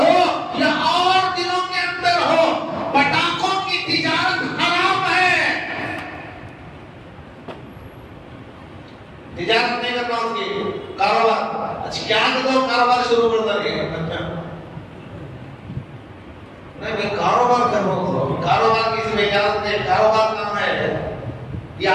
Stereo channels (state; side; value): identical; both; correlation 1.00